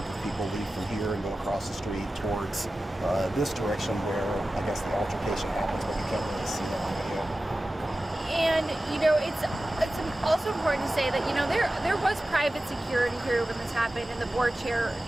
of people leave from here and go across the street towards this direction where I guess the altercation happens, but you can't really see that on video. And you know, it's also important to say that, you know, there was private security here when this happened, and the board chair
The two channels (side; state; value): both; normal; correlation 0.95